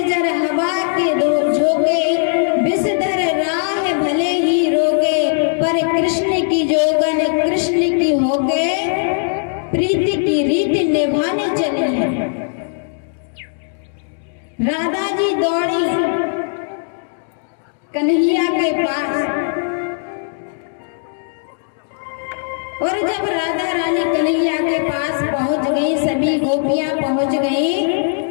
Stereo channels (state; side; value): silent; right; digital silence